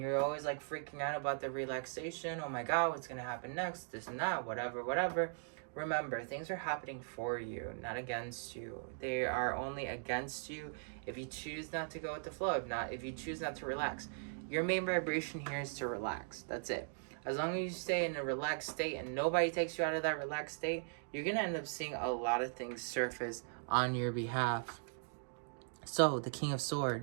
always like freaking out about the relaxation, oh my god, what's gonna happen next, this and that, whatever, remember, things are happening for you, not against you. They are only against you if you choose not to go with the flow, if you choose not to relax. Your main vibration here is to relax. That's it. As long as you stay in a relaxed state and nobody takes you out of that relaxed state, you're gonna end up seeing a lot of things surface on your behalf. So, the King of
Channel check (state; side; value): silent; left; digital silence